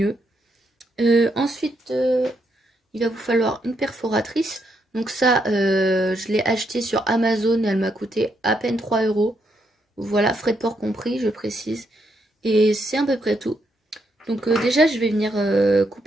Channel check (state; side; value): normal; both; correlation 0.78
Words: Ensuite, il va vous falloir une perforatrice. Donc ça, je l'ai acheté sur Amazon et elle m'a coûté à peine 3 €. Voilà, frais de port compris, je précise. Et c'est à peu près tout. Donc déjà, je vais venir